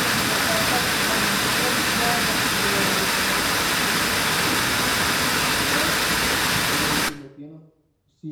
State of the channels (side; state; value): both; identical; correlation 1.00